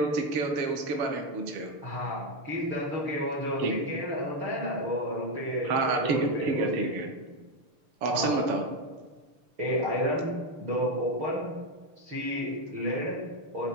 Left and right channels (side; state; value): left; late; 6.6 ms